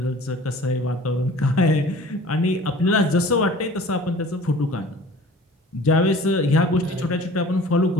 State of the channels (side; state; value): both; normal; correlation 0.46